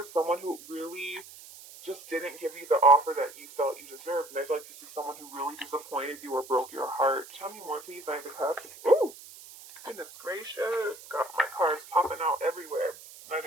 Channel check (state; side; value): noise; right; hiss, 18 dB below the sound